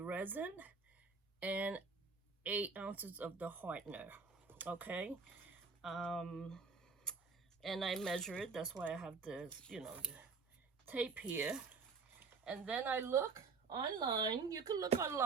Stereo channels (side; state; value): left; quieter; 4.8 dB